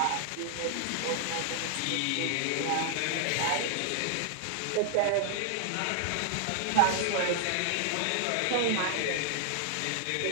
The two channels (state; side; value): different; both; correlation 0.00